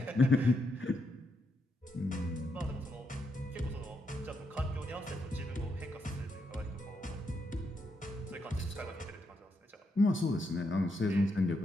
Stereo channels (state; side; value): normal; both; correlation 0.80